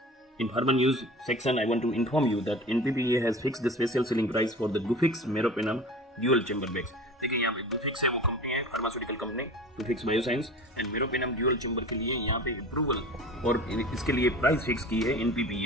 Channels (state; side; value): normal; both; correlation 0.38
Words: In Pharma News section, I want to inform you that NPPA has fixed the special selling price for the Gufic's Meropenem dual chamber bags. देखिए यहाँ पे Gufic's है वो company है, pharmaceutical company, Gufic's bioscience and meropenem dual chamber के लिए यहाँ पे अप्रूवल और इसके लिए प्राइस फिक्स की है